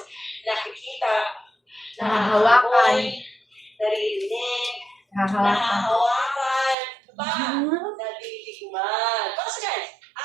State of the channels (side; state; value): left; drops out; at 6.8 s